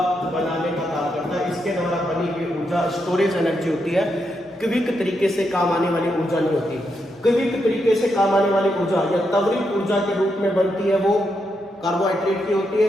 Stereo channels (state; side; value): normal; both; correlation 0.82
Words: बनाने का काम करता है। इसके द्वारा बनी हुई ऊर्जा स्टोरेज एनर्जी होती है, क्विक तरीके से काम आने वाली ऊर्जा नहीं होती। क्विक तरीके से काम आने वाली ऊर्जा या त्वरित ऊर्जा के रूप में बनती है वो कार्बोहाइड्रेट की होती है,